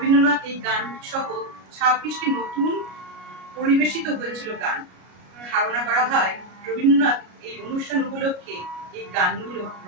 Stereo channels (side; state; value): left; late; 33 ms